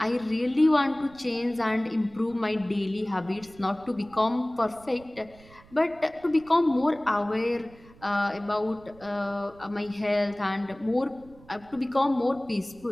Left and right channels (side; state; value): right; noise; rumble, 24 dB below the sound